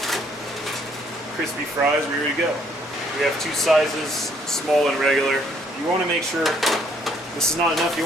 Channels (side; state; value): both; normal; correlation 0.66